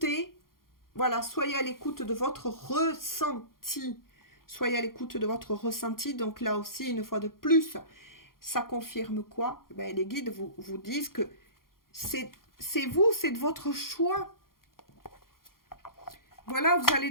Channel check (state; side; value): late; right; 0.92 ms